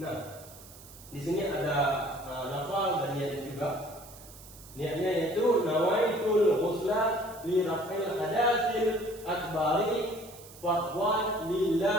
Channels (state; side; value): noise; right; hiss, 19 dB below the sound